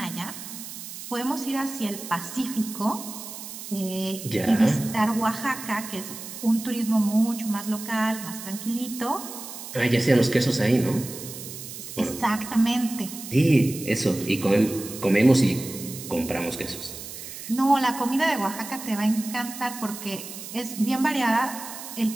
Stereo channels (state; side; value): noise; right; hiss, 11 dB below the sound